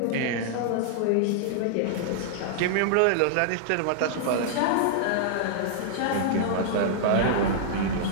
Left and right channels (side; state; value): both; different; correlation -0.01